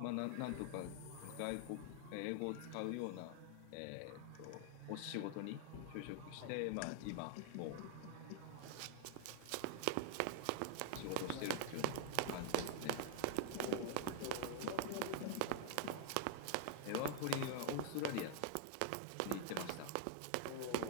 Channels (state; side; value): different; both; correlation 0.00